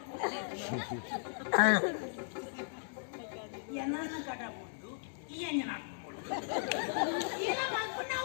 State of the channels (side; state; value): right; silent; digital silence